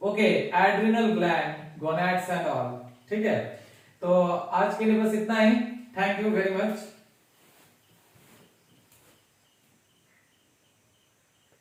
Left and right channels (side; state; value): both; identical; correlation 1.00